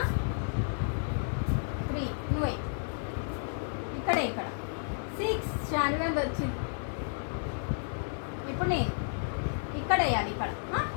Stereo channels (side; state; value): right; silent; 57 dB below the other